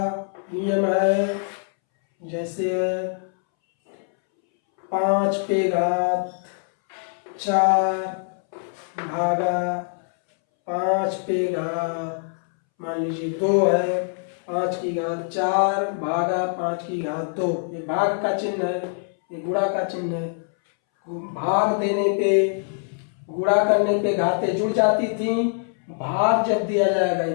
नियम है, जैसे 5 पे घात 4 भागा 5 पे घात मान लीजिए 2 है, 5 की घात 4 भागा 5 की घात 2, ये भाग का चिन्ह है, ये गुणा का चिन्ह है। भाग देने पे, गुणा करने पे घातें जुड़ जाती थी, भाग जब दिया जाएगा, ये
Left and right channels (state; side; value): silent; right; 63 dB below the other